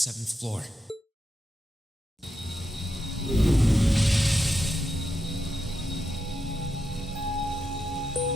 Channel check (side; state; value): both; normal; correlation 0.86